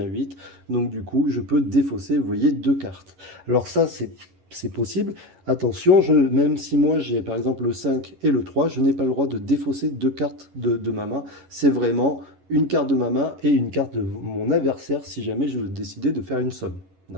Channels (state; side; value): late; left; 11 ms